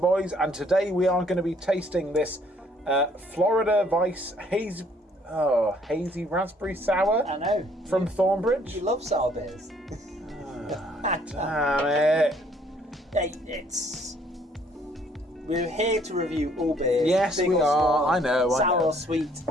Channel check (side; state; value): both; normal; correlation 0.63